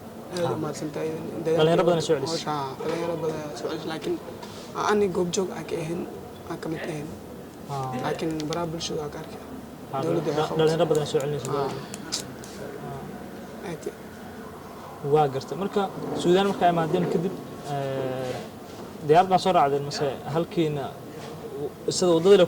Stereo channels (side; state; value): both; identical; correlation 1.00